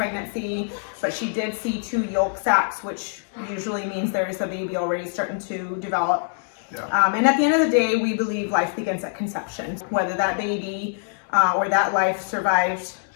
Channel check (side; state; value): right; silent; 63 dB below the other